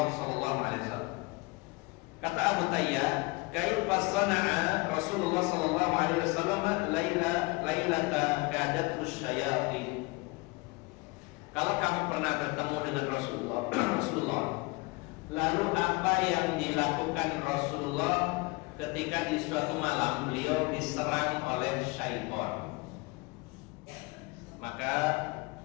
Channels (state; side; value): quieter; right; 25.7 dB